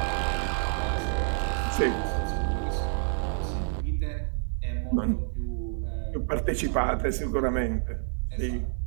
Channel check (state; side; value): silent; left; 59 dB below the other